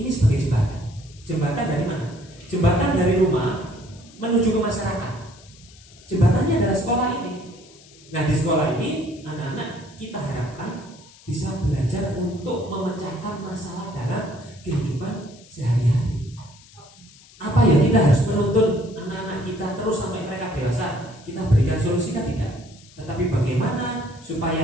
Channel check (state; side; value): noise; left; hiss, 24 dB below the sound